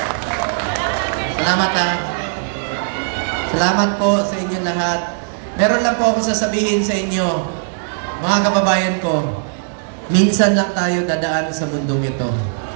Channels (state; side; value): silent; left; digital silence